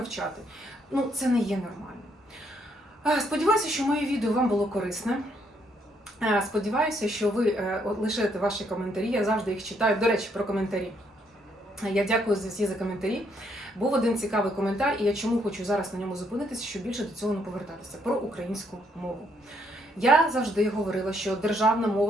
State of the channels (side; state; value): both; normal; correlation 0.72